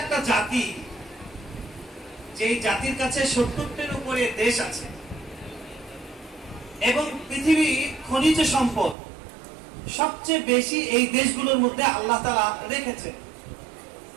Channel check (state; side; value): drops out; left; at 9.0 s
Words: জাতি, যে জাতির কাছে 70টির উপরে দেশ আছে এবং পৃথিবী খনিজ সম্পদ সবচেয়ে বেশি এই দেশগুলোর মধ্যে আল্লাহ তাআলা রেখেছেন।